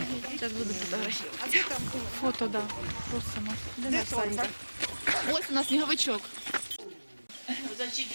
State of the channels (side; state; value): both; inverted; correlation -1.00